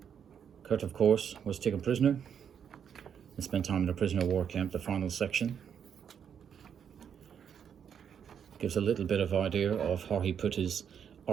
Kurt, of course, was taken prisoner and spent time in a prisoner of war camp. The final section gives a little bit of idea of how he put his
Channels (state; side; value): quieter; left; 8.0 dB